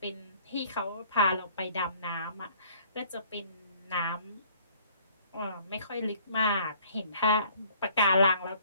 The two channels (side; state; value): both; inverted; correlation -0.56